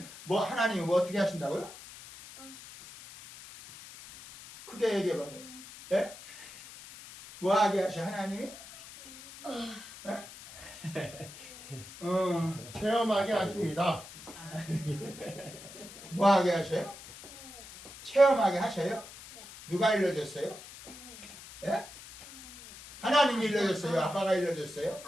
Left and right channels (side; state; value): left; noise; hiss, 16 dB below the sound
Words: 하나님이 어떻게 하신다고요? 크게 얘기해봐요. 예? 뭐 하게 하셔 하나님이? 체험하게 하십니다. 뭐 하게 하셔요? 체험하게 하셔요? 누가 일러줬어요? 예? 하나님이 일러줬어요? 아빠가 일러줬어요?